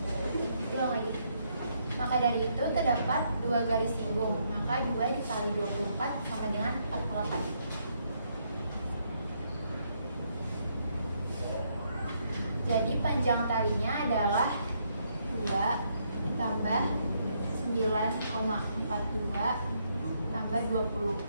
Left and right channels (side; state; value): both; inverted; correlation -0.74